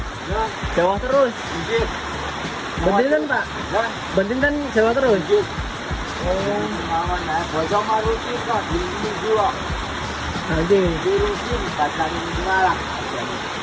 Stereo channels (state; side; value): identical; both; correlation 1.00